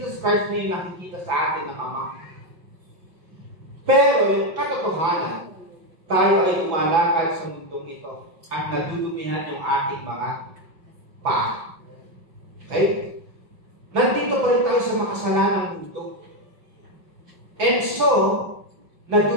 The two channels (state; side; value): late; left; 5.9 ms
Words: Christ na yung nakikita sa atin ng Ama. Pero yung katotohanan, tayo ay tumalakad sa mundong ito at nadudumihan yung ating mga paa. Okay? Nandito pa rin tayo sa makasalanang mundo. And so,